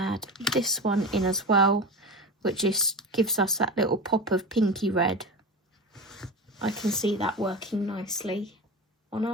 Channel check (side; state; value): both; normal; correlation 0.26